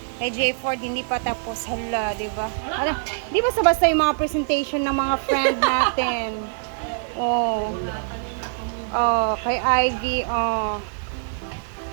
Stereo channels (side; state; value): left; silent; digital silence